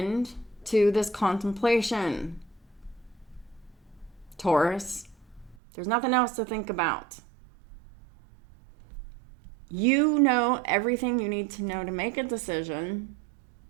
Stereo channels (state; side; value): drops out; left; at 5.6 s